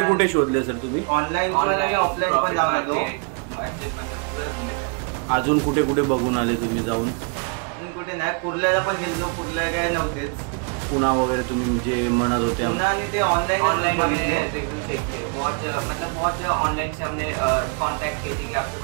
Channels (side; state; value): left; quieter; 36.4 dB